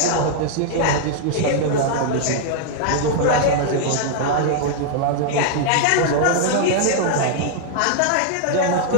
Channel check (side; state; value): both; different; correlation -0.01